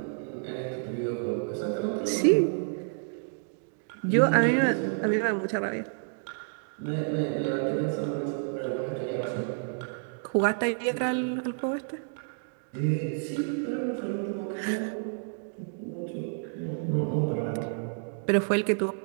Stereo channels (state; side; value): silent; left; digital silence